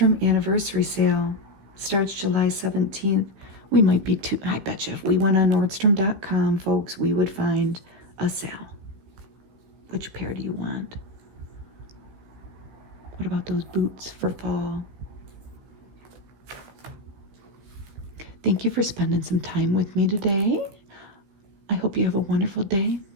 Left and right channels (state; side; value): late; left; 15 ms